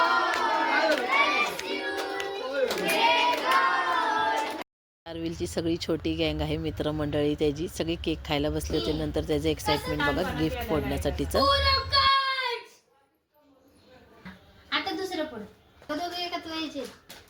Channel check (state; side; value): identical; both; correlation 1.00